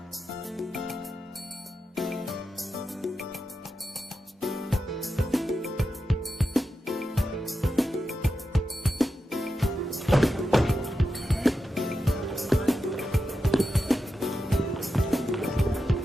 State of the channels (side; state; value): both; normal; correlation 0.89